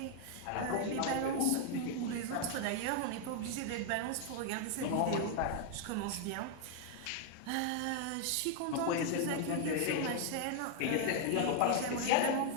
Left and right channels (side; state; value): both; different; correlation 0.00